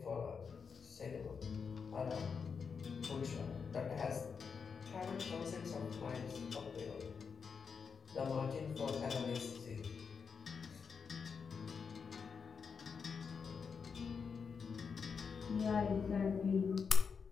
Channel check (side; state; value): right; quieter; 5.9 dB